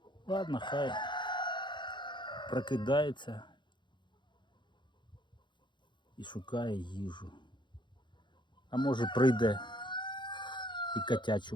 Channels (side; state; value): right; late; 0.23 ms